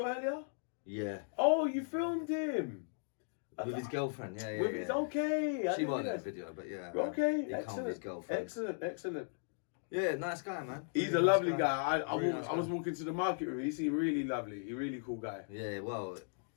earlier? Yeah. Oh, you filmed him. With his girlfriend, yeah. With his, okay. I She didn't wasn't in realise. the video, but yeah. Okay, He come with his excellent. girlfriend. Excellent. Yeah, nice guy, man. He's a Really lovely nice guy. Really nice I was walking to the market with him. He seemed really lovely. He's a really cool guy. Yeah, well,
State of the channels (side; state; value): right; silent; digital silence